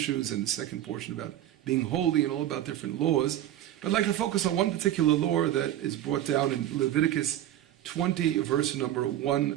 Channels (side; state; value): left; quieter; 12.5 dB